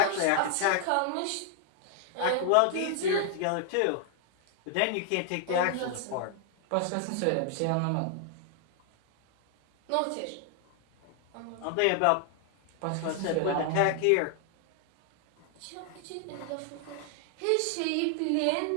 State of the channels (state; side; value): different; both; correlation 0.00